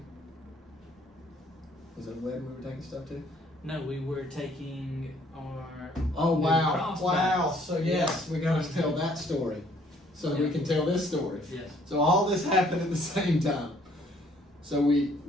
Was it a wedding we were taking stuff to? No, we were taking our. Oh new wow! cross Wow! bags. So yes, we got to tell that story, so that we can tell this story. Yes. So all this happened at the same time. So we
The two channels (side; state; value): both; normal; correlation 0.62